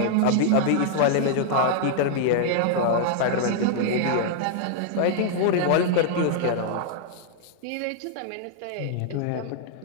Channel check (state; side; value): different; both; correlation -0.01